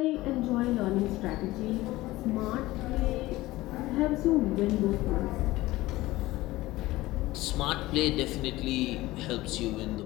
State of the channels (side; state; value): right; quieter; 18.2 dB